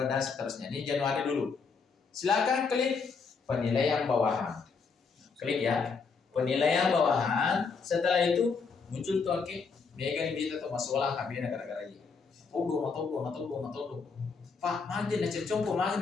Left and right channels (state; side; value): quieter; right; 5.1 dB